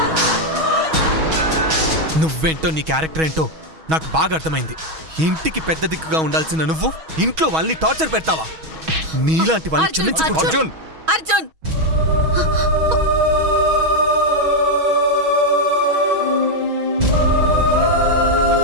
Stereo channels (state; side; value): late; left; 6.3 ms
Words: నువ్వేంటో నీ క్యారెక్టర్ ఏంటో నాకు బాగా అర్థమైంది. ఇంటికి పెద్ద దిక్కుగా ఉండాల్సిన నువ్వు ఇంట్లో వాళ్ళని టార్చర్ పెడతావా? నీలాంటి వాళ్ళని అర్జున్, క్షమించకూడదు. అర్జున్. అర్జున్